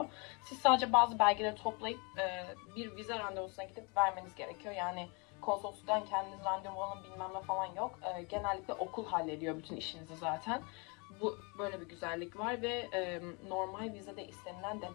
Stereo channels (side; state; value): right; quieter; 31.5 dB